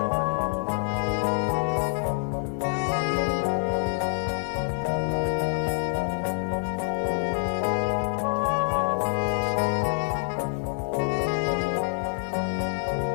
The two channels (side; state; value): right; silent; 56 dB below the other